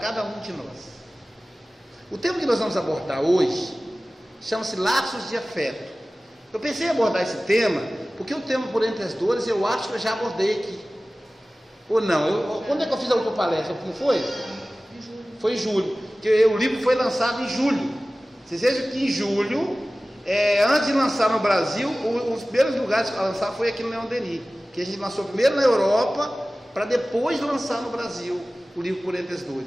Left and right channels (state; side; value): normal; both; correlation 0.97